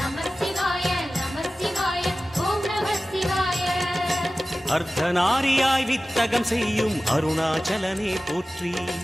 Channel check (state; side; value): normal; both; correlation 0.96